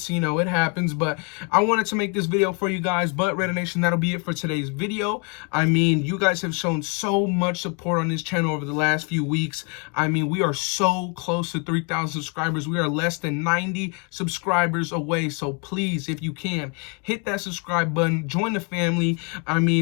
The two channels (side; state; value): right; quieter; 34.3 dB